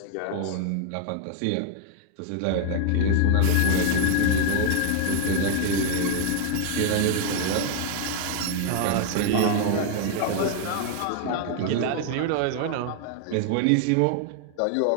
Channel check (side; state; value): both; different; correlation 0.00